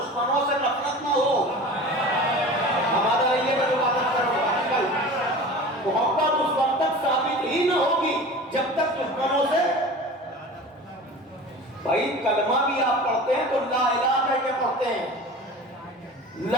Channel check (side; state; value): both; normal; correlation 0.37